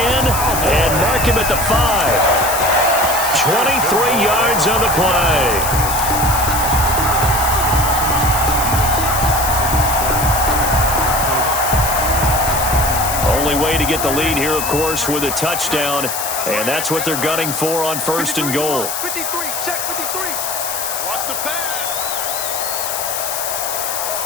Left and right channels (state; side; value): noise; left; hiss, 4 dB below the sound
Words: mark him at the 5. 23 yards on the play. Only way to get the lead here, of course, with a touchdown. And that's what they're gunning for on 1st and goal. 53, check 53. Watch the pass.